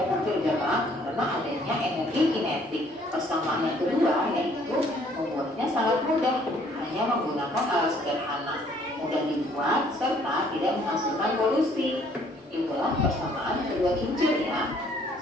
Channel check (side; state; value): both; normal; correlation 0.61